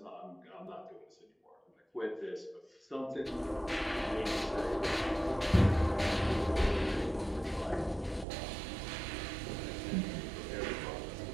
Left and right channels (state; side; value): drops out; left; at 8.2 s